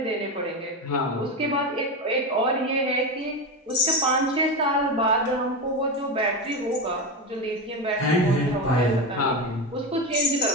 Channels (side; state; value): both; normal; correlation 0.17